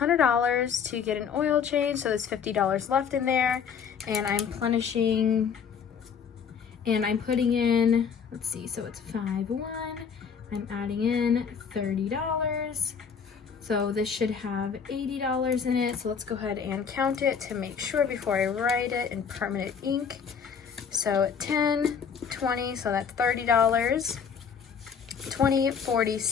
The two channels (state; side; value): quieter; right; 6.8 dB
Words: to get an oil change, so there's $50 left in there. And I'm plenishing, and I'm putting in, let's see, so it's 5-1. I'm adding in $30. So this should have $80 in it. So let's go ahead and count it to make sure before I write it in permanent ink. So 10, 20, so that's $30. 20, 40,